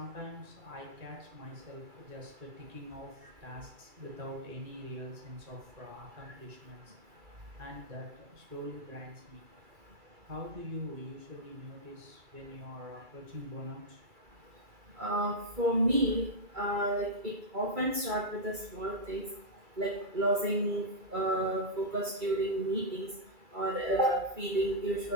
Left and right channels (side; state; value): left; late; 2.3 ms